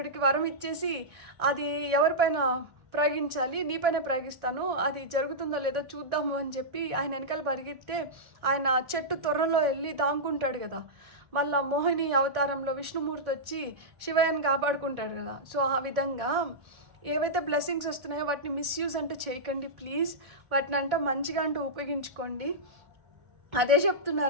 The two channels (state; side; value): late; left; 1.6 ms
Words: వరం ఇచ్చేసి అది ఎవరిపైన ప్రయోగించాలి, నీపైన ప్రయోగిస్తాను, అది జరుగుతుందో లేదో చూద్దాము అని చెప్పి ఆయన వెనకాల పరిగెత్తే ఆయన చెట్టు తొర్రలో వెళ్ళి దాంకుంటాడు కదా. మళ్ళీ మోహిని అవతారంలో విష్ణుమూర్తి వచ్చి శివయ్యని కాపాడుకుంటాడు కదా. సో ఆ విధంగా ఏవైతే బ్లెస్సింగ్స్ వస్తున్నాయో వాటిని మిస్యూజ్ అంటే చేయకండి ప్లీజ్. వాటిని అంటే మంచిగా అంటూ ఉపయోగించుకోండి. అదే